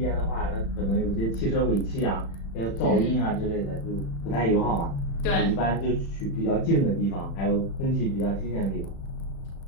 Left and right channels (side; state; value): right; late; 36 ms